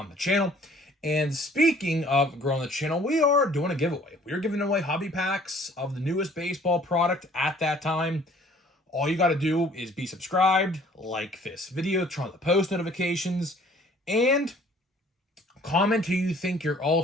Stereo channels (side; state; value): both; normal; correlation 0.55